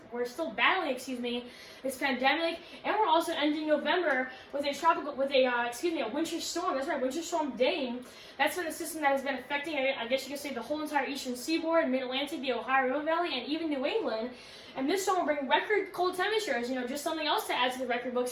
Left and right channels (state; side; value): identical; both; correlation 1.00